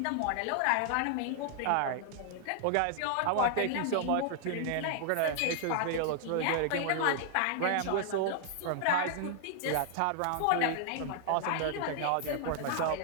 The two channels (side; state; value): both; different; correlation 0.00